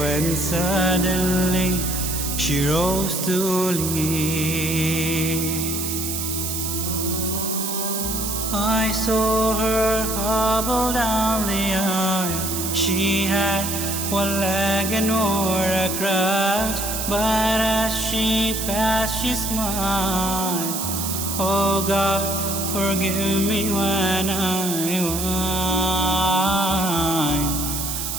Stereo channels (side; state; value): right; noise; hiss, 3 dB below the sound